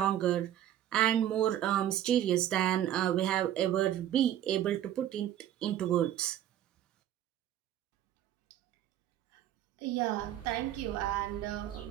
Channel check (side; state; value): left; quieter; 11.7 dB